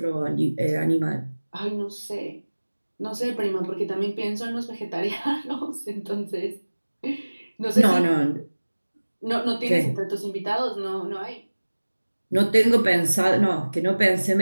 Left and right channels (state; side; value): inverted; both; correlation -1.00